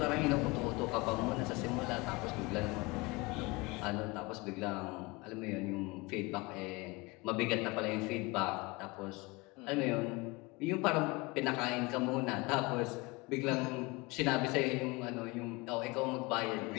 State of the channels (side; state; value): right; quieter; 24.5 dB